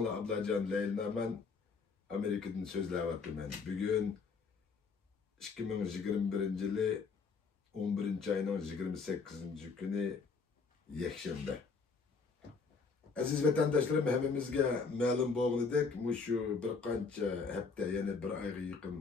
Ablacan Leylnaman Amerika'dan sözleyapman. Bugün 2021 yılı 11. ayının 28. günü yakshanba. Aziz vatandaşlarım, hemimizge ma'lum bo'lganidek, şu bir qancha hafta, yani bir ayga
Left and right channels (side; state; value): right; quieter; 4.8 dB